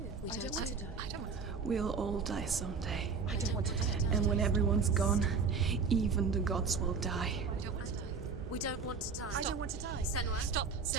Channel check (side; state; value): left; quieter; 5.2 dB